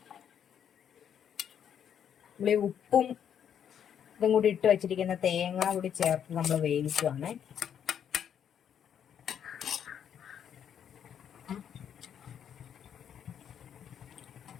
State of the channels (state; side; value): quieter; right; 8.8 dB